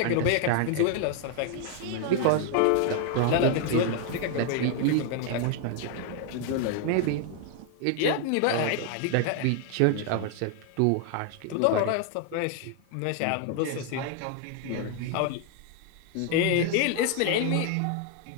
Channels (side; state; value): both; different; correlation 0.00